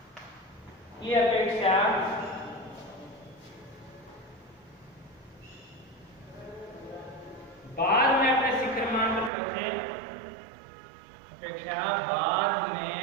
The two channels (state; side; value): drops out; left; at 9.3 s